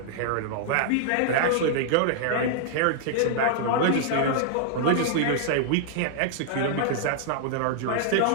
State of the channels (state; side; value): different; both; correlation -0.01